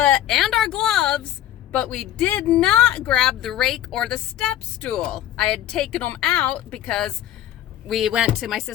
our gloves, but we did not grab the rake or the step stool. I had taken them out because we went to my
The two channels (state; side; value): quieter; right; 12.4 dB